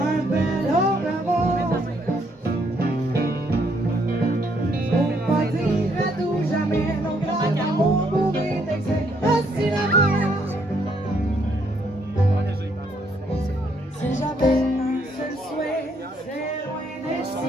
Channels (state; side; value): normal; both; correlation 0.71